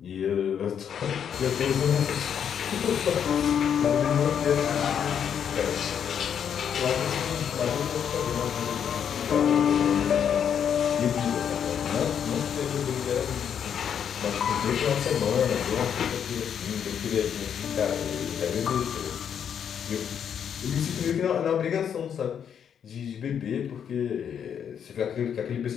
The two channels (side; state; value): right; quieter; 8.3 dB